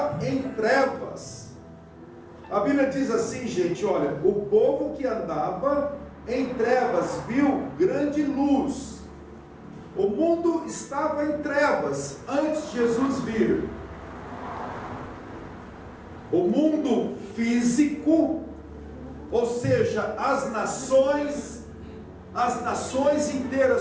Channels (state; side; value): identical; both; correlation 1.00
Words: em trevas. A Bíblia diz assim, gente, olha, o povo que andava em trevas viu grande luz. O mundo estava em trevas antes de Jesus vir. O mundo físico, ou seja, as nações, as nações